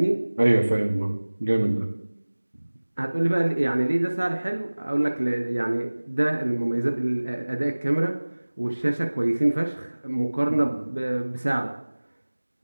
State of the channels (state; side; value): inverted; both; correlation -1.00